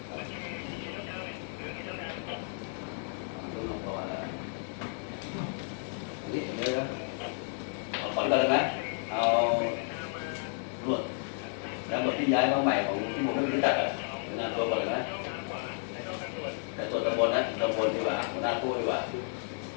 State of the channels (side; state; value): right; silent; 56 dB below the other